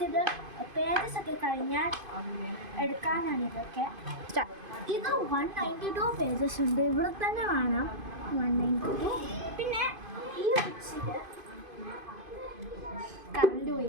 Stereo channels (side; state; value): left; late; 2.5 ms